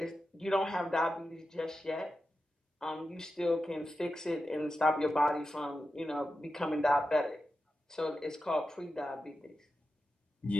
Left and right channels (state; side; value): normal; both; correlation 0.91